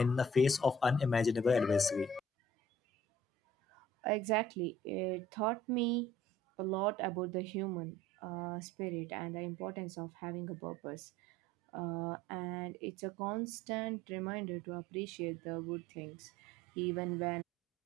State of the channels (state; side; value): normal; both; correlation 0.53